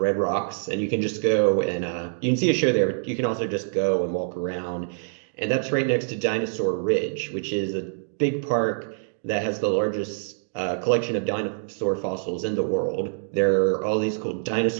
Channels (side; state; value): left; silent; digital silence